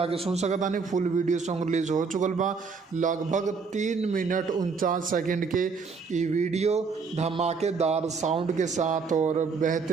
सुन सकता नहीं। फुल वीडियो सॉन्ग रिलीज हो चुकल बा। लगभग 3 मिनट 49 सेकंड के ये वीडियो धमाकेदार साउंड के साथ और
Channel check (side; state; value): left; quieter; 5.0 dB